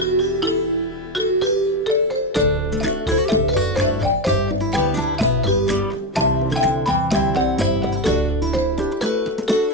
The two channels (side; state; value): both; normal; correlation 0.16